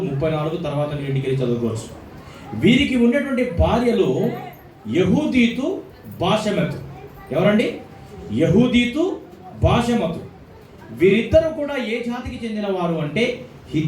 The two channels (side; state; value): both; identical; correlation 1.00